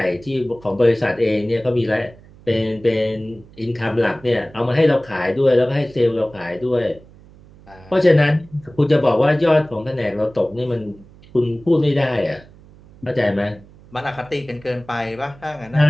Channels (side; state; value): right; noise; hum, 24 dB below the sound